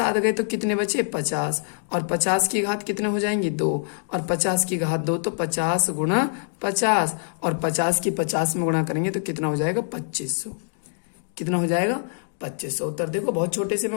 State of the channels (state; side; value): silent; right; digital silence